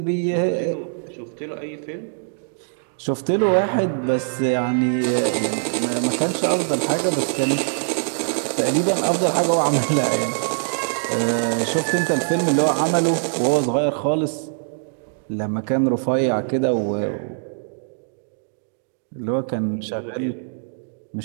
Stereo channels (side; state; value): left; silent; digital silence